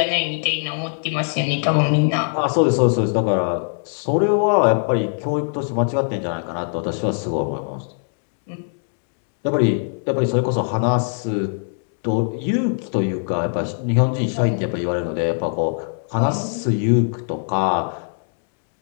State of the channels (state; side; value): silent; right; 65 dB below the other